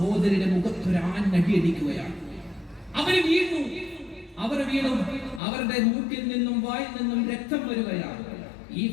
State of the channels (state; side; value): drops out; right; at 5.4 s